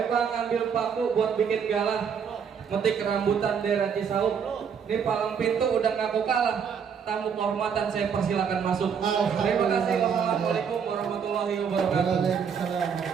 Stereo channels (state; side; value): quieter; left; 7.0 dB